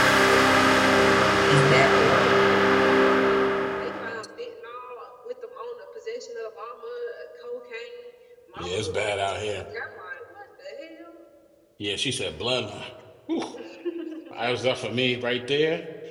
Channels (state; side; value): identical; both; correlation 1.00